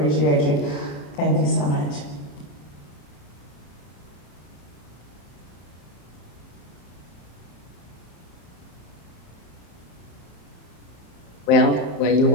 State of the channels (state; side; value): late; right; 34 ms